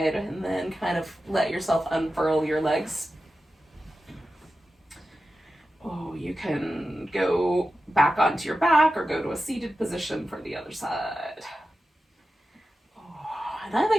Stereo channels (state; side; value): normal; both; correlation 0.92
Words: and then kind of let yourself unfurl your legs. Oh, you can go back onto your back or go to a seated position for the other side. Oh, and I